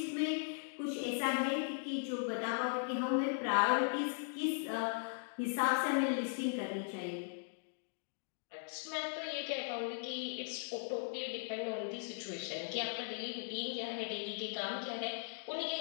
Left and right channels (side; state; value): right; silent; digital silence